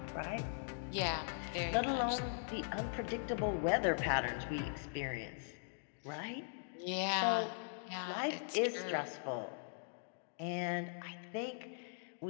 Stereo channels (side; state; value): right; silent; digital silence